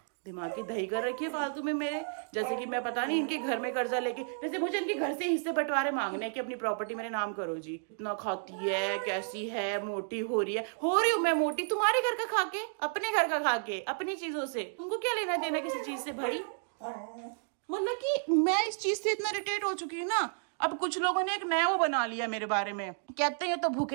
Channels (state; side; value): silent; left; digital silence